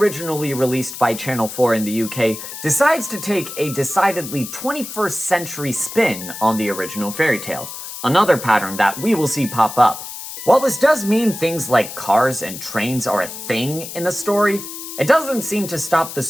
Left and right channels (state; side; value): noise; left; hiss, 10 dB below the sound